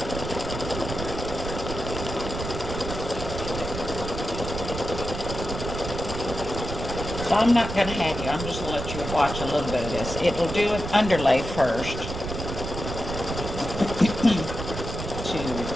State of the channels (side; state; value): right; noise; rumble, 6 dB below the sound